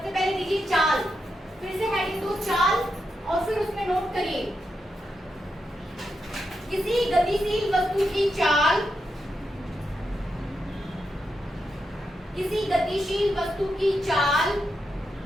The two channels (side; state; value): both; normal; correlation 0.85